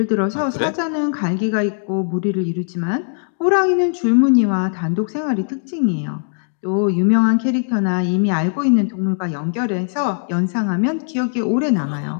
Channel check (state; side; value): silent; right; digital silence